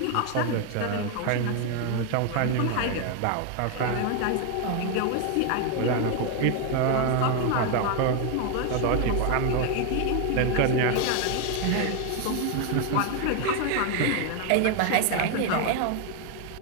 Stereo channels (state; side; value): different; both; correlation 0.01